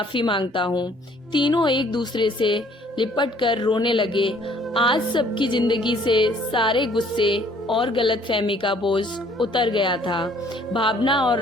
मांगता हूँ। तीनों एक दूसरे से लिपट कर रोने लगे। आज सबकी जिंदगी से सारे गुस्से और गलतफहमी का बोझ उतर गया था। भावना और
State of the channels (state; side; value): normal; both; correlation 0.59